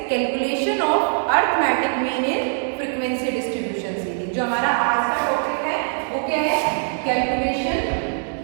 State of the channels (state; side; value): silent; left; digital silence